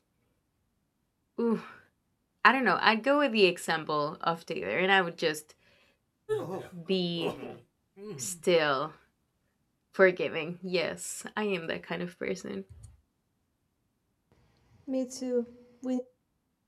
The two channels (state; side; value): identical; both; correlation 1.00